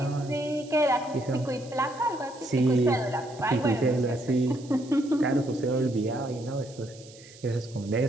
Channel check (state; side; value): noise; right; hiss, 21 dB below the sound